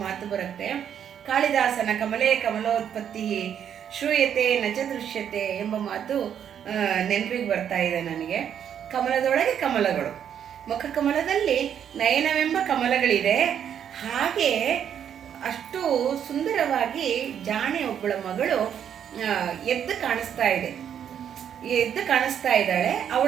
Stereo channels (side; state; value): left; quieter; 8.9 dB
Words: ಮಾತು ಬರುತ್ತೆ. ಕಾಳಿದಾಸನ ಕಮಲೇ ಕಮಲೋತ್ಪತ್ತಿ ಶ್ರೂಯತೆ ನಚ ದೃಶ್ಯತೆ ಎಂಬ ಮಾತು ನೆನಪಿಗೆ ಬರ್ತಾ ಇದೆ ನನಗೆ. ಕಮಲದೊಳಗೆ ಕಮಲಗಳು, ಮುಖಕಮಲದಲ್ಲಿ ನಯನವೆಂಬ ಕಮಲಗಳಿದೆ. ಹಾಗೆ ಅಷ್ಟು ಸುಂದರವಾಗಿ ಜಾಣೆ ಒಬ್ಬಳ ಮಗಳು ಎದ್ದು ಕಾಣಿಸ್ತಾ ಇದ್ದಾಳೆ.